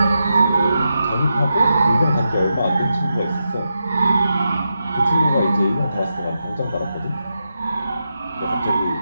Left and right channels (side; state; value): both; inverted; correlation -0.87